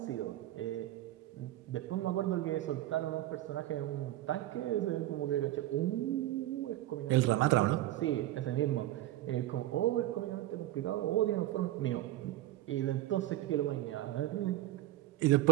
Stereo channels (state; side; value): quieter; left; 15.1 dB